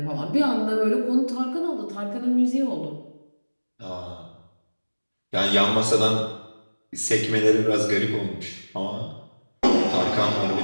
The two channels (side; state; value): both; inverted; correlation -1.00